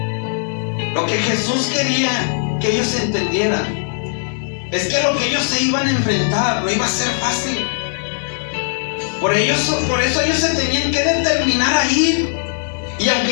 Lo que Jesús quería que ellos entendieran es que lo que ellos se iban a enfrentar no iba a ser fácil. Por eso ellos se tenían que determinar a ir. Y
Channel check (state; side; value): silent; right; digital silence